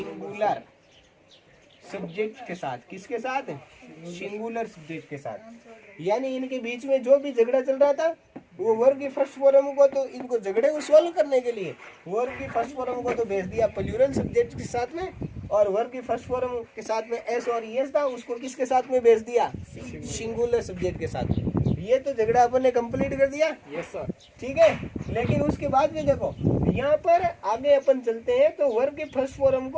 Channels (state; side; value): identical; both; correlation 1.00